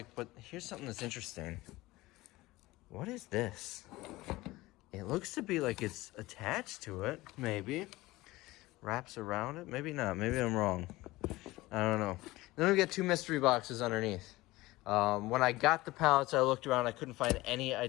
But here's something that's interesting. What is this? It looks to be like it's attached to it, maybe. Wraps around it, maybe not. Maybe I'm wrong. I don't know. Then we got 2 mystery boxes underneath. When I got the pallets, I looked around. I couldn't find any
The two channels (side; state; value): right; quieter; 19.2 dB